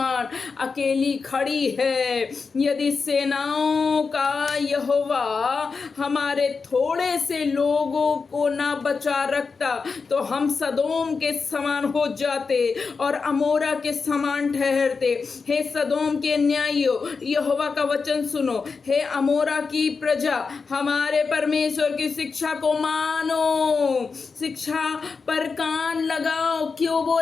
अकेली खड़ी है। यदि सेनाओं का यहोवा हमारे थोड़े से लोगों को ना बचा रखता, तो हम सदोम के समान हो जाते और अमोरा के समान ठहरते। हे सदोम के न्यायियों, यहोवा का वचन सुनो। हे अमोरा की प्रजा, हमारे परमेश्वर की शिक्षा को मानो, शिक्षा पर कान लगाओ। क्यों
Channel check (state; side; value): quieter; right; 4.9 dB